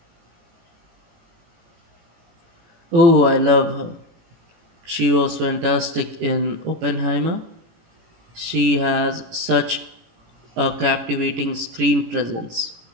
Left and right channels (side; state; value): left; late; 18 ms